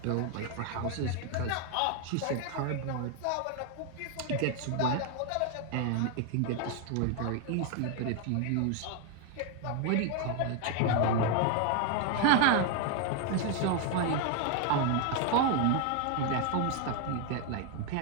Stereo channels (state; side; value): different; both; correlation 0.01